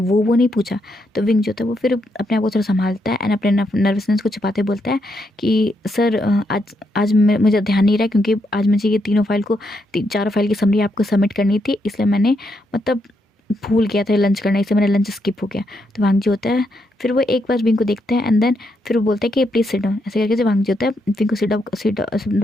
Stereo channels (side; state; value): both; normal; correlation 0.79